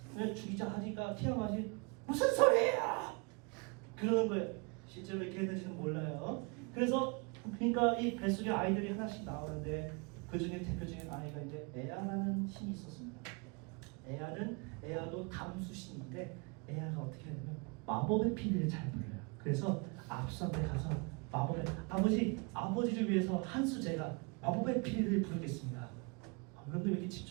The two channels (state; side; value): quieter; left; 31.7 dB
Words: 죽이자 하니까 티아마스이 무슨 소리야! 그러는 거예요. 실제로 이렇게 했는지는 몰라요. 그래서 그러니까 이 뱃속에 아이들이 하나씩 나오는데 그 중에 대표적인 아이가 이제 에아라는 신이 있었습니다. 에아도 담수신인데 에아가 어떻게 하냐면 마법의 피리를 잘 불어요. 그래서 압수한테 가서 아버지를 위해서 한수 제가 마법의 피리를 부르겠습니다. 여러분들 왜 이렇게